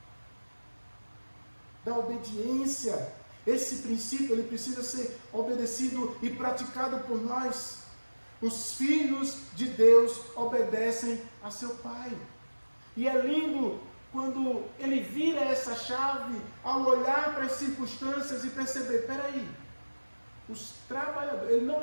da obediência. Esse princípio ele precisa ser obedecido e praticado por nós. Os filhos de Deus obedecem a seu Pai. E é lindo quando ele vira essa chave ao olhar para as circunstâncias e perceber, peraí, os trabalhadores, ele não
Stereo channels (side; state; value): both; inverted; correlation -1.00